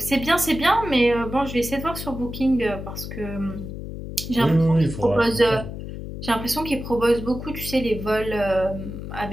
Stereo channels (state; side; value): noise; left; hum, 9 dB below the sound